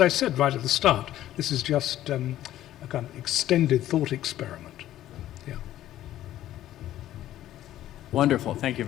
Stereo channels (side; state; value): right; quieter; 13.1 dB